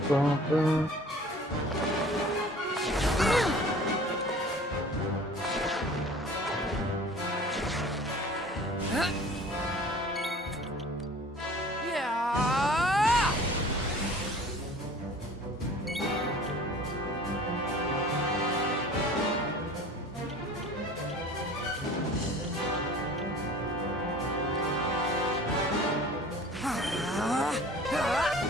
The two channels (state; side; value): normal; both; correlation 0.45